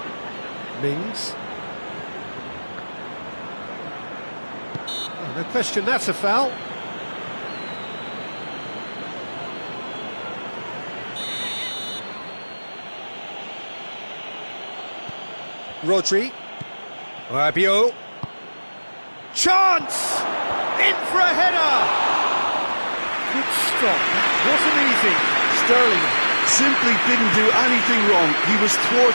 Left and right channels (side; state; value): both; inverted; correlation -1.00